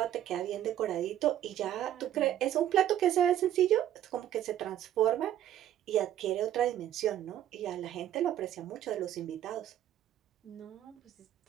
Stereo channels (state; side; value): quieter; left; 11.6 dB